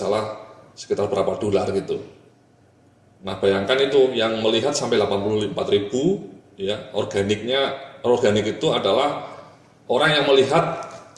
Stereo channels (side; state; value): both; identical; correlation 1.00